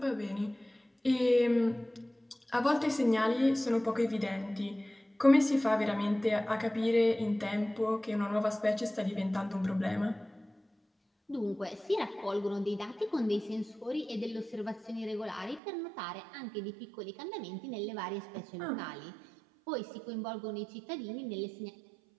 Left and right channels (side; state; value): left; drops out; at 15.6 s